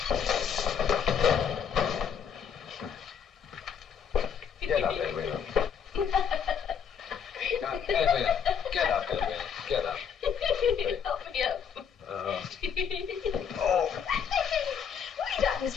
Get up, Edwina. Now, Edwina, get up, Edwina. Get up. Help me up. Oh, That was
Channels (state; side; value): quieter; right; 7.5 dB